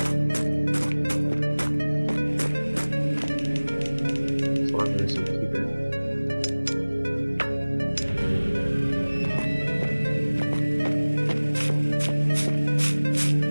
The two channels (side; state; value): both; inverted; correlation -1.00